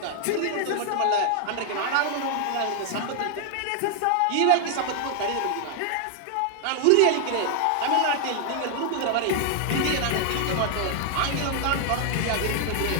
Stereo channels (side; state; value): both; different; correlation 0.00